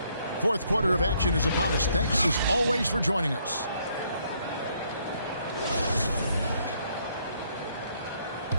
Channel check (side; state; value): both; inverted; correlation -0.69